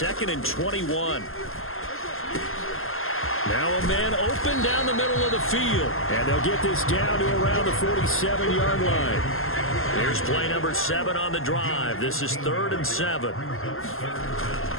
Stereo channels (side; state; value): right; late; 0.61 ms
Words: and 21. Now a man open down the middle of the field. And they'll get this down to around the 47-yard line. Here's play number 7 on the drive. This is 3rd and 7.